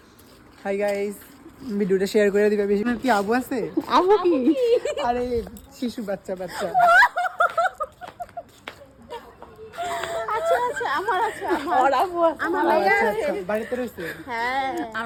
হাই গাইস, ভিডিওটা শেয়ার করে দিবে। বেশি কি আবু আছে? আবু কি? আরে শিশু বাচ্চা বাচ্চা। আচ্ছা আচ্ছা আমার আছে ওর আবু আছে। আমার ও, ভাইয়া আচ্ছা, আছে। আচ্ছা, বাড়িতে রয়েছে। হ্যাঁ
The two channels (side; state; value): both; identical; correlation 1.00